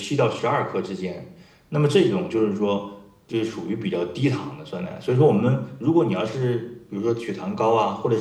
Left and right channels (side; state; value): both; identical; correlation 1.00